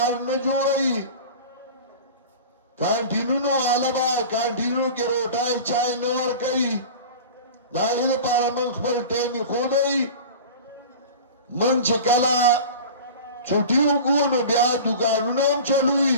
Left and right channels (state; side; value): inverted; both; correlation -0.35